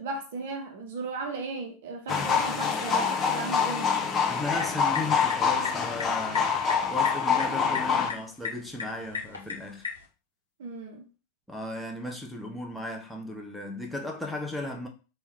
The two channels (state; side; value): quieter; right; 4.7 dB